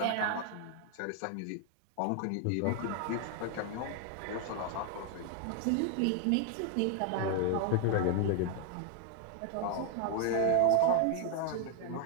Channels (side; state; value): both; different; correlation 0.00